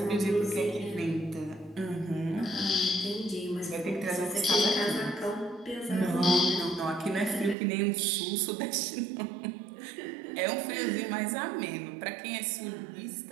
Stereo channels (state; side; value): drops out; left; at 7.6 s